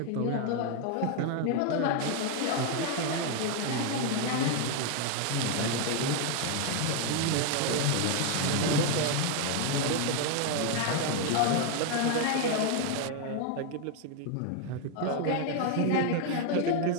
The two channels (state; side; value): different; both; correlation 0.01